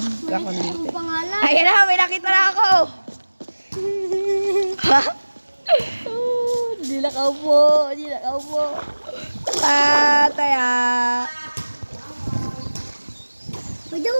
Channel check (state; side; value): inverted; both; correlation -1.00